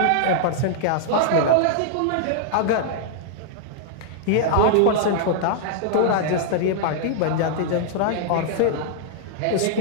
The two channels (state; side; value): different; both; correlation -0.01